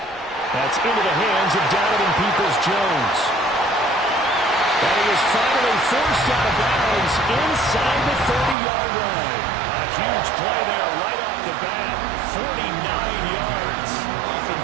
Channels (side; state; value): left; drops out; at 8.6 s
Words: That's into the hands of Donovan Peoples-Jones. And he is finally forced out of bounds inside the 30-yard line. A huge play there right off the bat, 49 yards.